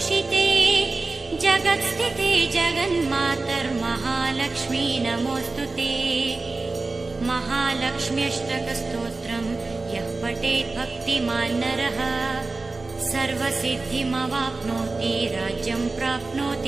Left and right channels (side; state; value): left; quieter; 3.6 dB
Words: जगत्स्थिते जगन्मातर्महालक्ष्मी नमोऽस्तुते। महालक्ष्म्यष्टकस्तोत्रम् यः पठेत् भक्तिमान् नरः सर्वसिद्धिमवाप्नोति राज्यं